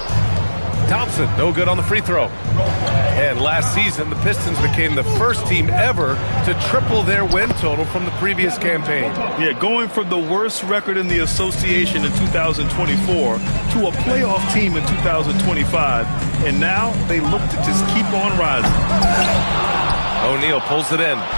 Thompson, no good on the free throw. And last season, the Pistons became the first team ever to triple their win total from the previous campaign. Yeah, going from the worst record in the association in 2024 to a playoff team in 2025. And now they look to just keep on rising. O'Neal pulls it in.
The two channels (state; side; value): inverted; both; correlation -1.00